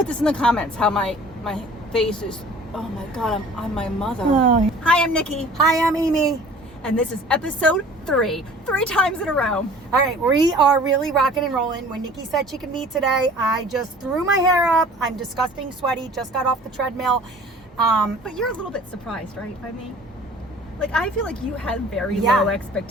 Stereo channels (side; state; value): both; normal; correlation 0.48